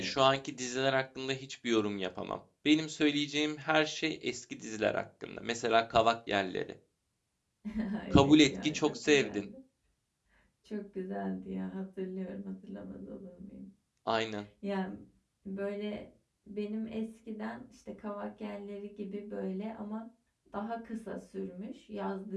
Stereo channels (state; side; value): identical; both; correlation 1.00